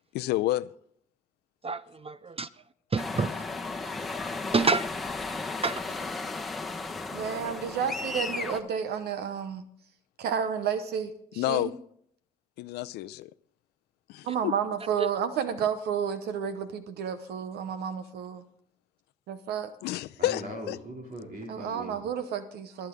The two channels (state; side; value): normal; both; correlation 0.21